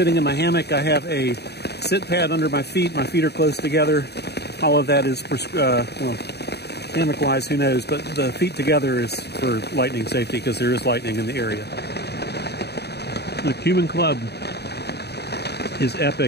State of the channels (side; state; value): right; late; 0.48 ms